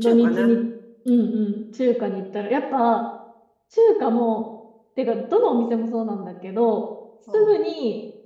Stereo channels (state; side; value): identical; both; correlation 1.00